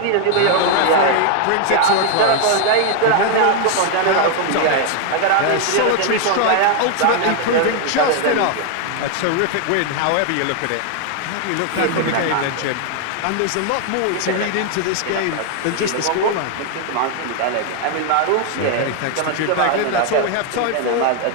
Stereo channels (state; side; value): different; both; correlation 0.01